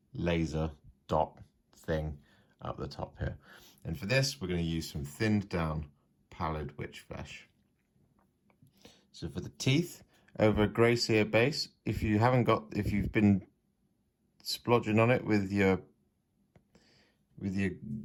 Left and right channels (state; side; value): identical; both; correlation 1.00